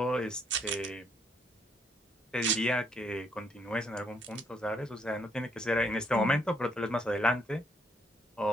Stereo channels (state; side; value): normal; both; correlation 0.71